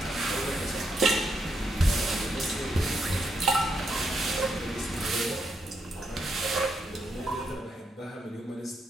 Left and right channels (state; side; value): normal; both; correlation 0.80